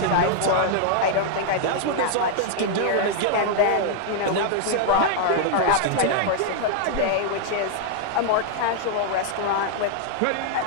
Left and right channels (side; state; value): both; different; correlation -0.01